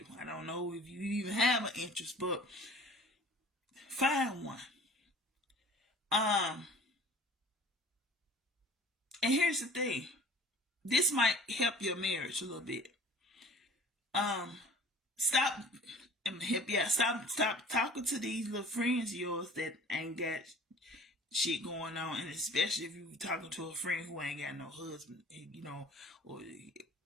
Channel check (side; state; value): both; normal; correlation 0.47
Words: I don't know if you even have an interest, but find one. And here's the thing. This might help your marriage a little bit. Stop. I'm gonna help you out. Stop talking to these little friends of yours that ain't got shit going on, and especially if you're talking to a friend who ain't got no husband, or